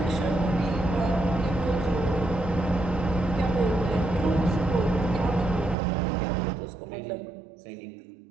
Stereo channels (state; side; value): drops out; left; at 5.8 s